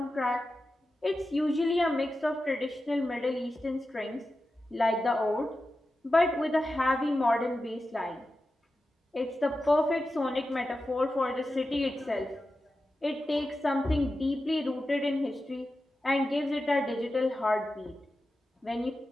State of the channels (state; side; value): normal; both; correlation 0.92